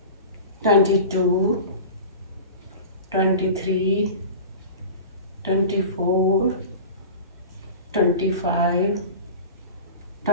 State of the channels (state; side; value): inverted; both; correlation -0.35